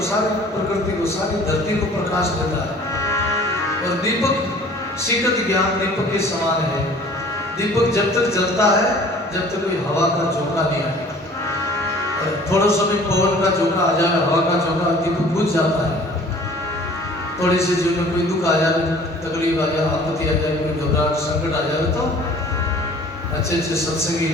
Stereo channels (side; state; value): both; normal; correlation 0.50